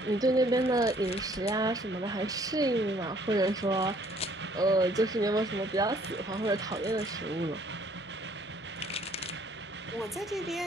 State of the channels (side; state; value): both; normal; correlation 0.61